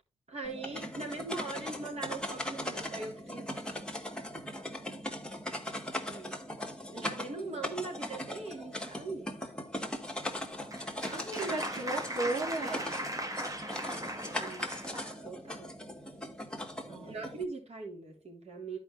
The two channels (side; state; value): both; normal; correlation 0.49